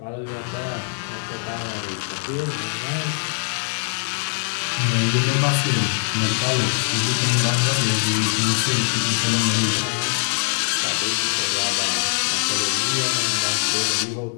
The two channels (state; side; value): silent; right; digital silence